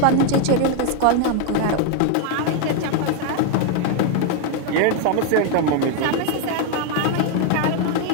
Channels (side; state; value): both; different; correlation 0.00